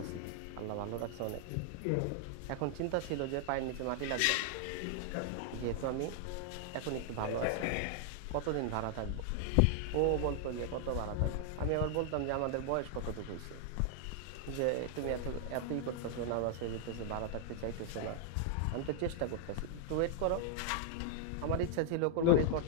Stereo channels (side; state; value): both; different; correlation 0.00